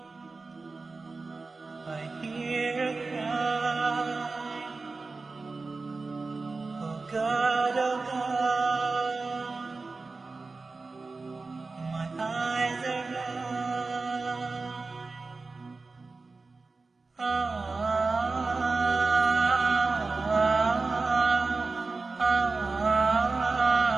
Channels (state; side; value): quieter; left; 3.8 dB